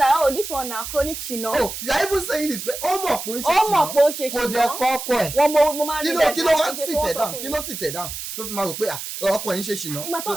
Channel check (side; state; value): right; noise; hiss, 8 dB below the sound